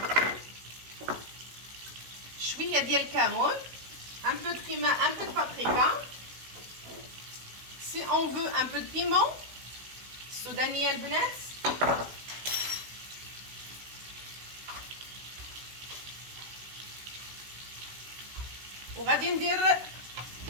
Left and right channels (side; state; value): left; late; 16 ms